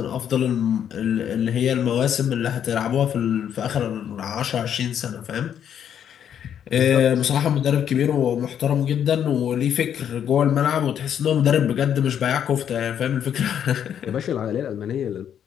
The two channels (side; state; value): right; quieter; 9.1 dB